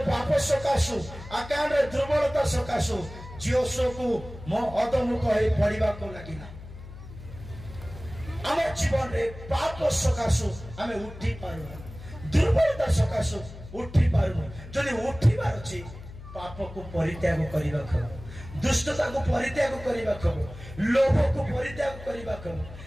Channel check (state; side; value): noise; left; hum, 15 dB below the sound